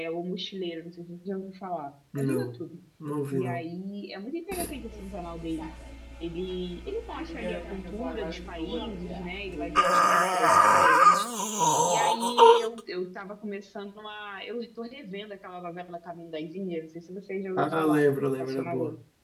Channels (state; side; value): identical; both; correlation 1.00